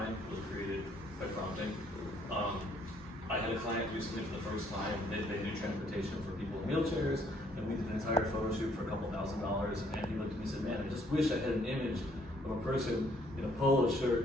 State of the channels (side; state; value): both; normal; correlation 0.65